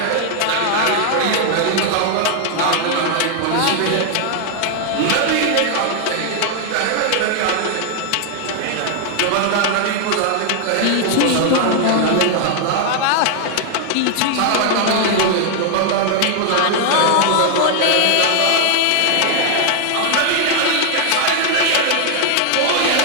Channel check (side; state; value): both; different; correlation 0.00